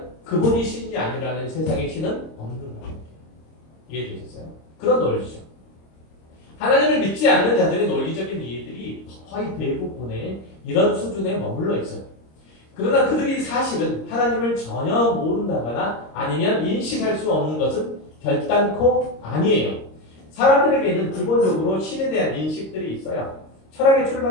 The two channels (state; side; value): late; right; 26 ms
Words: 그분이 신이 아니라는 세상에 신은 없는 거예요. 이해되셨어요? 그런 논리죠. 하나님을 믿지 않는 자들의 논리적인 이해들이 거의 대부분의 이런 수준에 머물러 있어요. 그러나 그들이 사실은 하나님을 전혀 모른다거나 아니면 인식할 수 없는 것은 결단코 아니에요. 사람들에게는 기본적으로 신에 대한 인식들이 있어요. 철학의